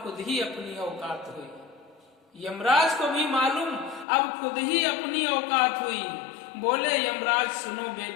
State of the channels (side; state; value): right; drops out; at 4.0 s